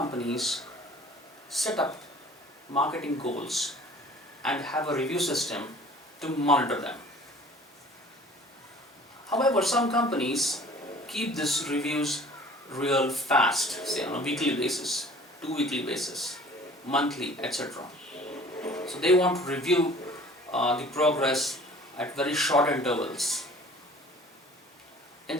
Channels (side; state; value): both; normal; correlation 0.48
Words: set up marketing goals and have a review system to monitor them. However, some companies keep these reviews real fast, say on a weekly basis, 2 weekly basis, monthly, etc. So they want to review the progress at very short intervals. In